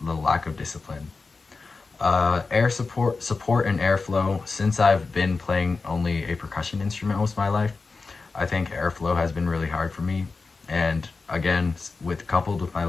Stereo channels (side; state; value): right; quieter; 4.2 dB